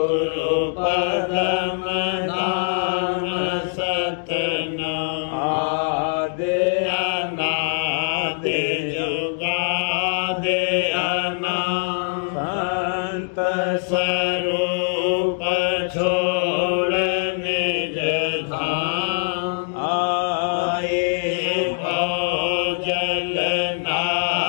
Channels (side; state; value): right; silent; digital silence